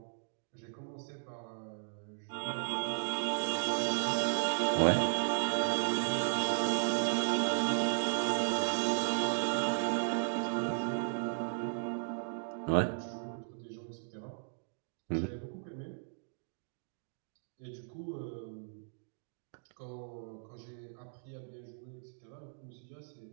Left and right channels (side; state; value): left; silent; digital silence